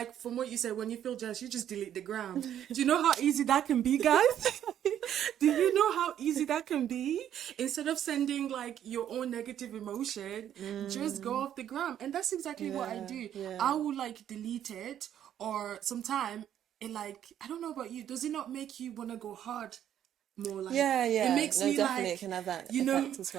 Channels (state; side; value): quieter; left; 10.4 dB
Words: from what you said, when you feel jealous, you just delete the gram. Do you know how easy that can be, guys? Do you know how easy that can be? Instead of sending like your own negative emotion, just go off the gram. And that's exactly what I do. I will like delete it, or sometime it like, I don't know about you, does it not make you want to go hard more? Like it makes no, me definitely like, it can have that you know, effect as